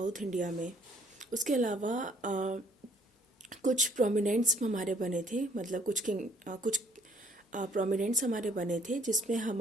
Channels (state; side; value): normal; both; correlation 0.61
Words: इंडिया में। उसके अलावा कुछ प्रोमिनेंट्स हमारे बने थे, मतलब कुछ प्रोमिनेंट्स हमारे बने थे, जिसमें